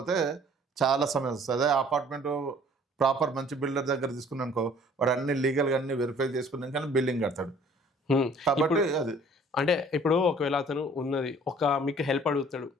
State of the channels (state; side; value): normal; both; correlation 0.54